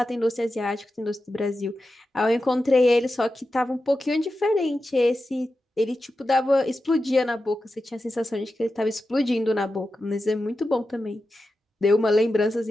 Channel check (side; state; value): both; normal; correlation 0.91